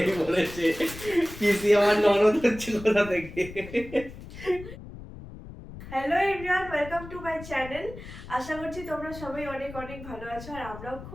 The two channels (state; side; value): noise; left; rumble, 14 dB below the sound